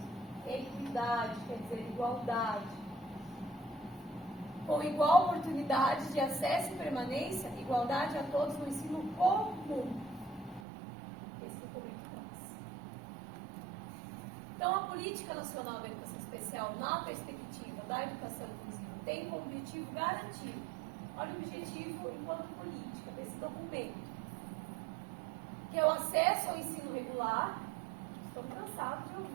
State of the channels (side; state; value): left; drops out; at 10.6 s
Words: Equidade, quer dizer, igualdade. Com igual oportunidade de acesso e permanência, igualdade a todos no ensino comum. Esse documento traz. Então, a Política Nacional da Educação Especial, na perspectiva da educação inclusiva, tem como objetivo garantir, olha o objetivo enquanto política desse documento, que é o acesso ao ensino regular. Estou cansados de